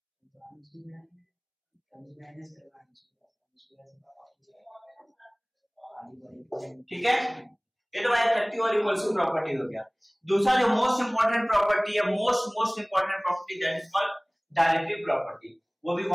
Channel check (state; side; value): identical; both; correlation 1.00